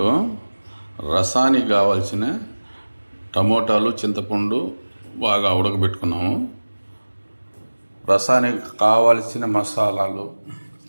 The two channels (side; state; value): both; inverted; correlation -1.00